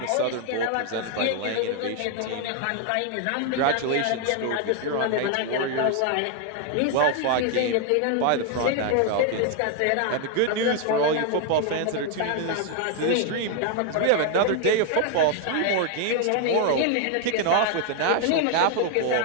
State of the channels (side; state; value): both; different; correlation 0.00